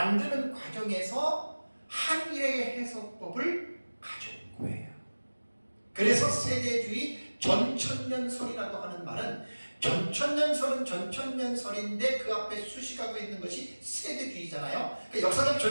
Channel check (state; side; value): inverted; both; correlation -1.00